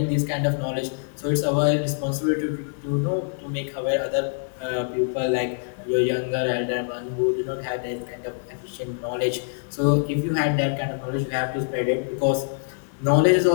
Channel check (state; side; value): silent; right; 62 dB below the other